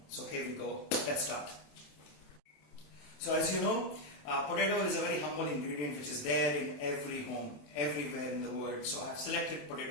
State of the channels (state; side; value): late; right; 27 ms